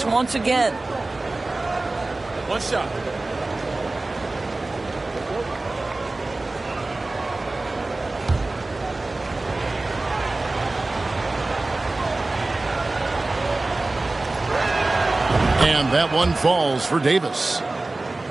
once again. One shot. And that one falls for Davis.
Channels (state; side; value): quieter; left; 3.1 dB